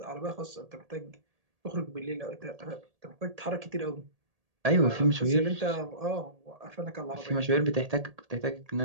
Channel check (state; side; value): late; left; 1.8 ms